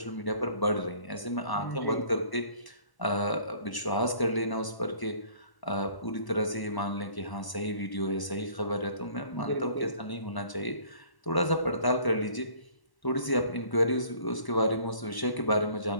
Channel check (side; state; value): right; late; 1.0 ms